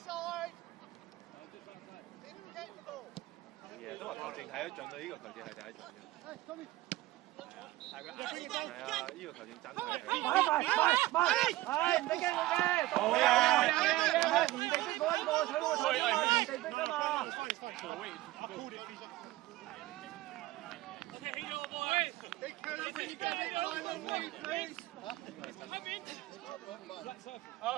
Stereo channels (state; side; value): quieter; left; 17.4 dB